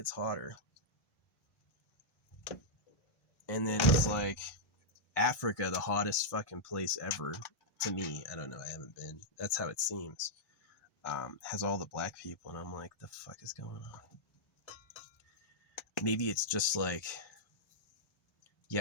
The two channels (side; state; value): right; late; 1.1 ms